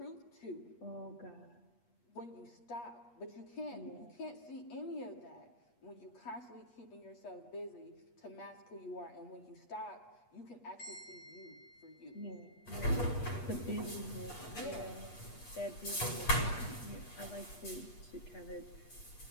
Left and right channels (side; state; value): right; late; 8.3 ms